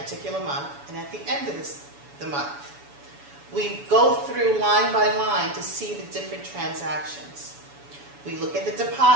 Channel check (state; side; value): late; left; 7.0 ms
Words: month and at the end of the month. We go through line by line to see the different transactions. We look at the